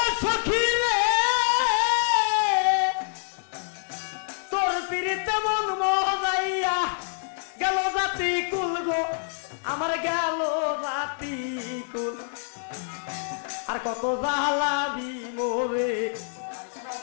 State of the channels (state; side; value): silent; right; digital silence